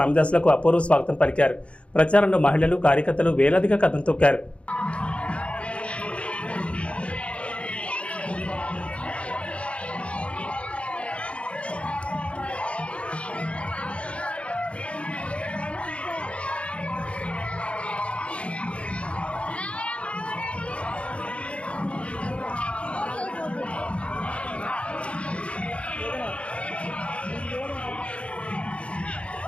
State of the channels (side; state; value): right; late; 0.061 ms